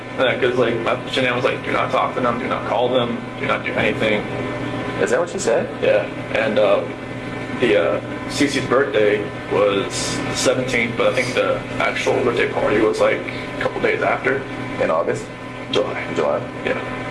Because like, Shanann was like, do not talk to them, do not call them, do not do anything. Is that what she said? Yeah. And Cece's birthday was the 17th, but I think the actual birthday party was like a couple days after. In August? July. July. Yeah.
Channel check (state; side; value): identical; both; correlation 1.00